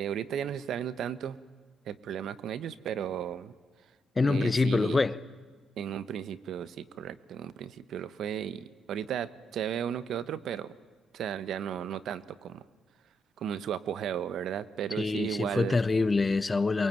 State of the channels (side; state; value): both; normal; correlation 0.80